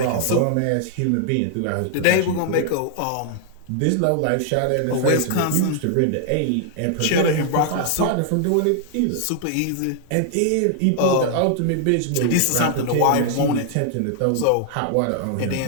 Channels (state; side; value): different; both; correlation 0.00